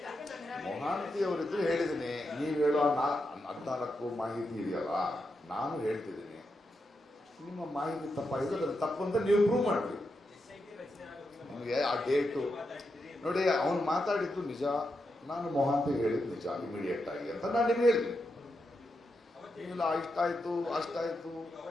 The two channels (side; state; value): both; normal; correlation 0.86